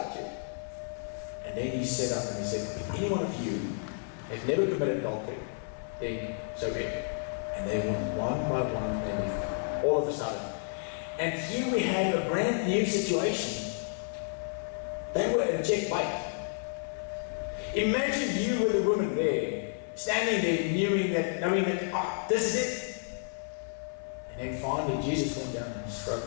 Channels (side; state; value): right; silent; 57 dB below the other